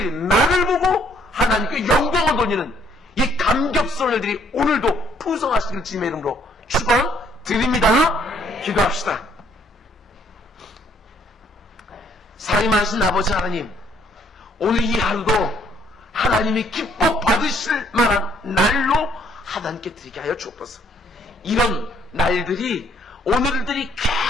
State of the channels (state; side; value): normal; both; correlation 0.65